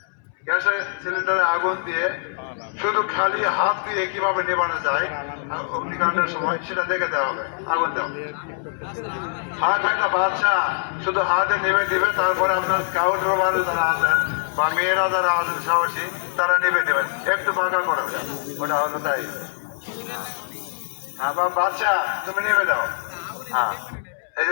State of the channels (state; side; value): silent; right; 63 dB below the other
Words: গ্যাসের সিলিন্ডারে আগুন দিয়ে শুধু খালি হাত দিয়ে কিভাবে নেবানো যায় অগ্নিকাণ্ডের সময়, সেটা দেখে দেওয়া হবে। আগুন দেওয়া হাত একটা বাচ্চা শুধু হাতে নেমে দিবে, তারপরে আপনার স্কাউট রোভার যারা আছেন বা মেয়েরা যারা আছেন সাহসী, তারা নেমে দেবেন, একটু বাঁকা করে ওটা হলো তাই। আবার বাচ্চা তুমি নেমে দাও। হ্যাঁ, এই